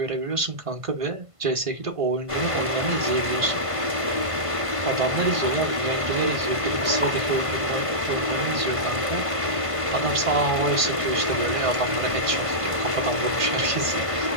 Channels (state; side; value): late; left; 1.5 ms